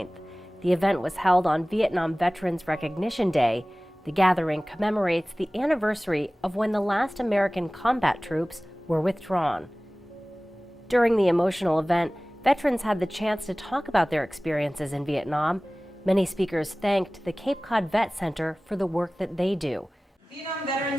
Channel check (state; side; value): normal; both; correlation 0.98